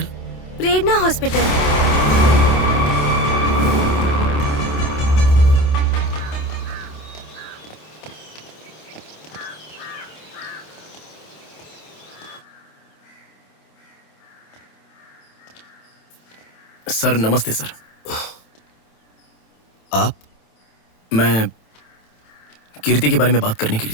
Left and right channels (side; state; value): right; late; 27 ms